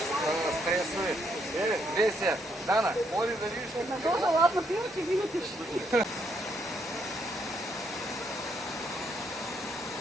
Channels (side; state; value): both; normal; correlation 0.74